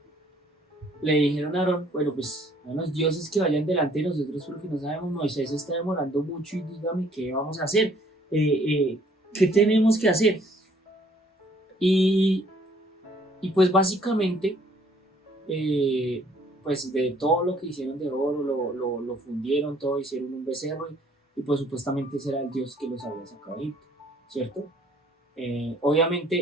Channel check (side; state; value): both; normal; correlation 0.61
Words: Le dijeron a Aarón, bueno, pues a los dioses que vayan delante de nosotros porque no sabemos, Moisés está demorando mucho y dígame qué vamos a hacer, qué tenemos que hacer. Y pues básicamente, pues de todo lo que hicieron de oro, lo fundieron todo, hicieron un becerro y pues supuestamente ese era el dios que los había sacado de Egipto, ¿cierto?